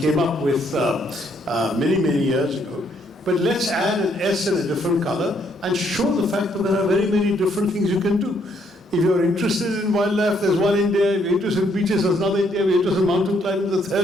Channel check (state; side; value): normal; both; correlation 0.70